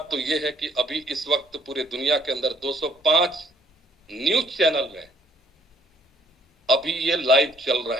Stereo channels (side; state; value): both; normal; correlation 0.62